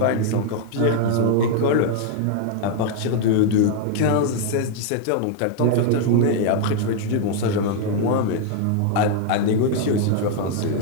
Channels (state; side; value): different; both; correlation 0.00